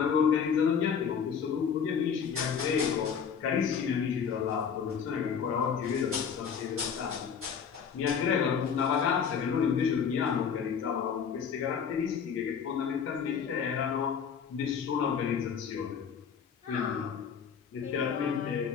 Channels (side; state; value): right; quieter; 7.0 dB